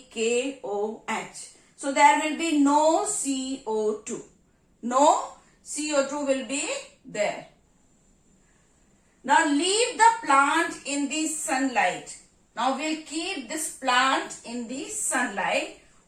KOH. So there will be no CO2. No CO2 will be there. Now leave the plant in the sunlight. Now we'll keep this plant in the sunlight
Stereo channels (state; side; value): identical; both; correlation 1.00